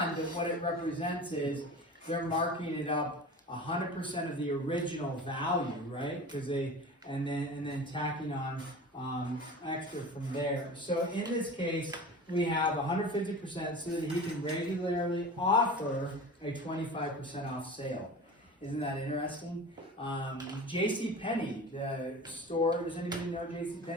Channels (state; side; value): normal; both; correlation 0.35